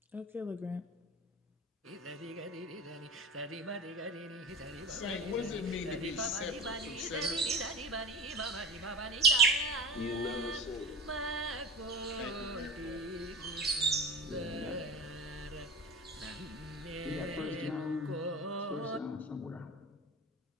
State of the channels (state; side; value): normal; both; correlation 0.31